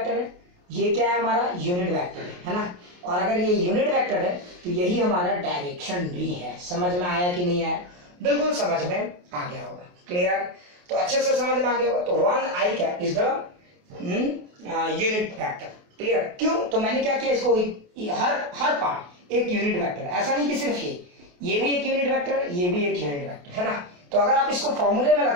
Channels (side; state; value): left; late; 28 ms